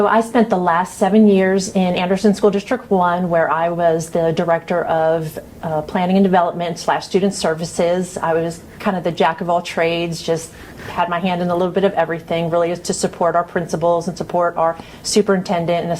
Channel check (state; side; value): identical; both; correlation 1.00